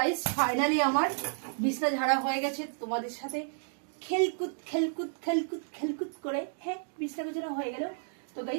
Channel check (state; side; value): silent; left; digital silence